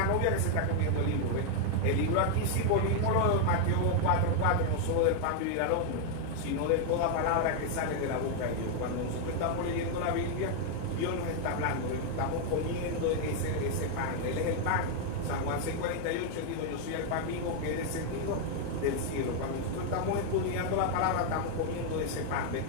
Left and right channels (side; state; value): both; different; correlation 0.00